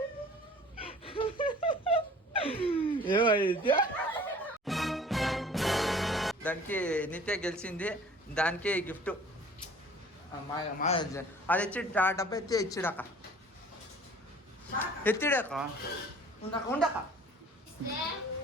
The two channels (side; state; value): both; normal; correlation 0.49